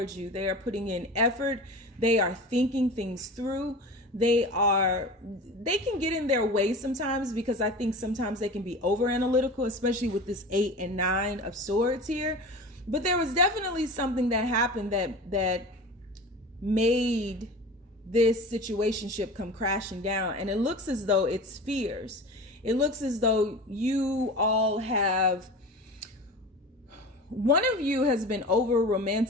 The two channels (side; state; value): both; normal; correlation 0.34